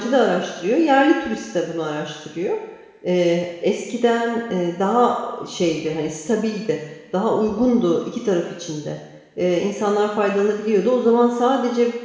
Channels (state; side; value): identical; both; correlation 1.00